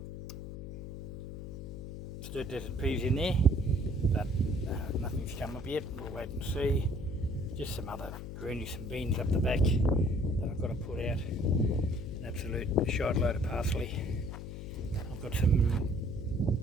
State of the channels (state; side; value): noise; left; hum, 9 dB below the sound